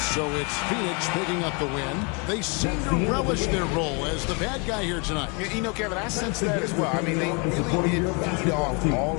So it's Phoenix picking up the win. They seem to relish their role as the bad guy here tonight. You know, Kevin, I sense that as well. I mean, they really did feed off all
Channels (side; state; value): right; quieter; 32.4 dB